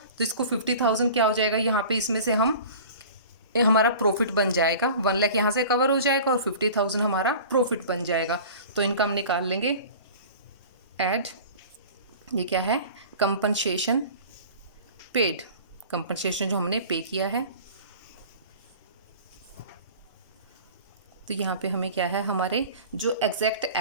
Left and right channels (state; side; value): inverted; both; correlation -0.41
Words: तो इसको 50,000 क्या हो जाएगा यहाँ पे? इसमें से हम हमारा प्रॉफिट बन जाएगा। 1 लाख यहाँ से कवर हो जाएगा और 50,000 हमारा प्रॉफिट बन जाएगा। तो इनका हम निकाल लेंगे। ऐड, ये क्या है? कंपनसेशन पेड, कंपनसेशन जो हमने पे किया है। तो यहाँ पे हमें क्या है? हमारे जो एग्जैक्ट